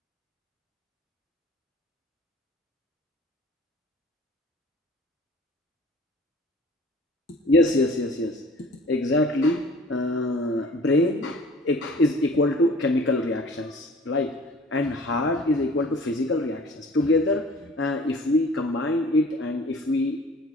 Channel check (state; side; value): normal; both; correlation 0.48